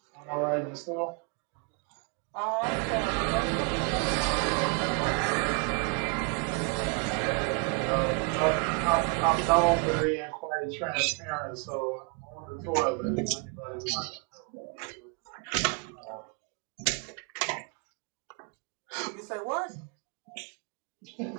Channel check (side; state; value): left; quieter; 34.8 dB